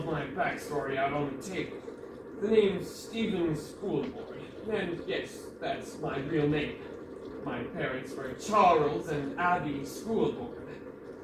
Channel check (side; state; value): both; identical; correlation 1.00